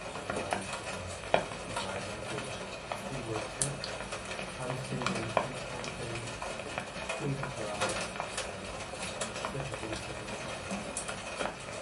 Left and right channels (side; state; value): both; identical; correlation 1.00